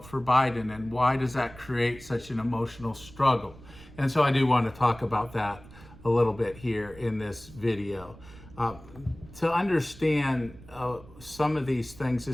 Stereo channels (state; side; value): noise; right; rumble, 20 dB below the sound